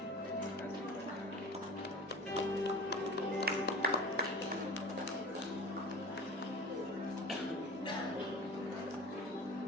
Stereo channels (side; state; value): both; normal; correlation 0.37